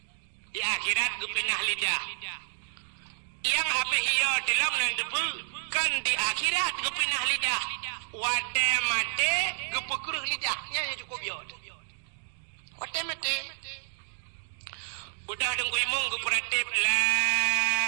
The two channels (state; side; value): silent; left; digital silence